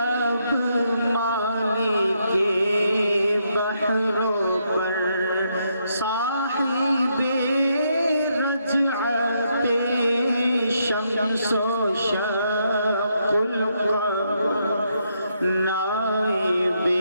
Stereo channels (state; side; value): inverted; both; correlation -0.77